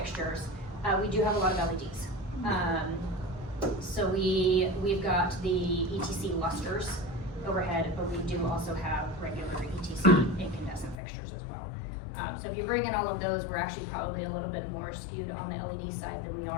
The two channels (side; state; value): right; drops out; at 11.0 s